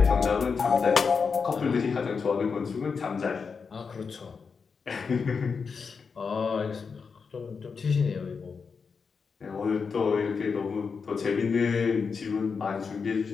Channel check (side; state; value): right; quieter; 5.5 dB